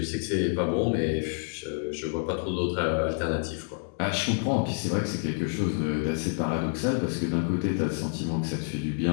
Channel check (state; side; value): silent; right; 59 dB below the other